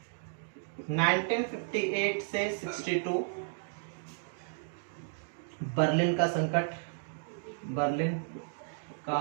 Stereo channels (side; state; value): left; silent; digital silence